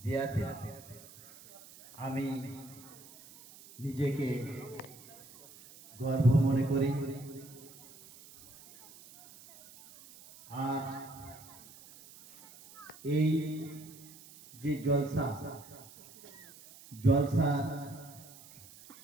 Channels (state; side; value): noise; right; hiss, 20 dB below the sound